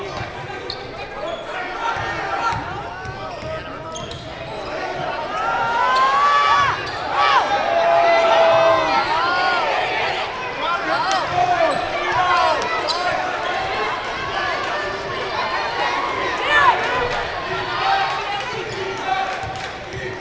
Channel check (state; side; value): identical; both; correlation 1.00